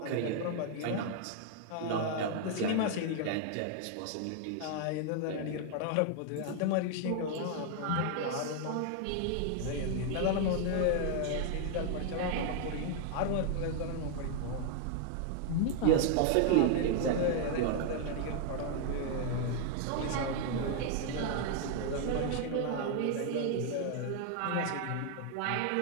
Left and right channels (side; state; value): both; different; correlation 0.00